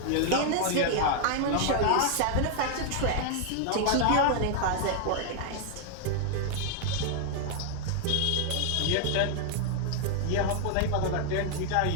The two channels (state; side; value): different; both; correlation 0.00